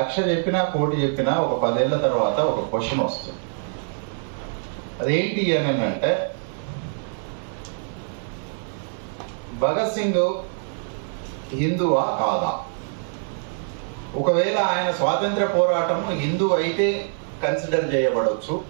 చెప్పినా 1,00,00,000 చెప్పినా ఒక 10 ఏళ్ల తర్వాత ఒక క్వశ్చన్ వస్తుంది. అదేంటి అని అంటే, భగత్ సింగ్ హిందువా కాదా? ఒకవేళ ఆయన స్వాతంత్ర పోరాటం హిందూ అయితే కన్సిడర్ చేయబడవచ్చు,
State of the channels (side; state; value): left; silent; 58 dB below the other